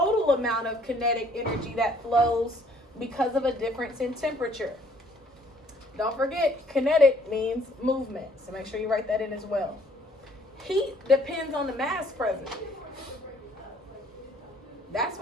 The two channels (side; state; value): both; normal; correlation 0.61